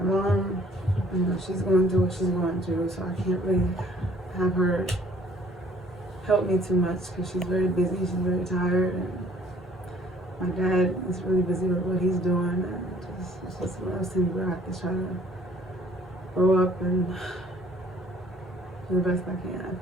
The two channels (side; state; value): both; normal; correlation 0.58